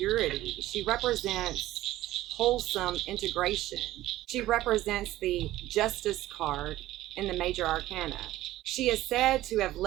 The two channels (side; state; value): left; quieter; 15.5 dB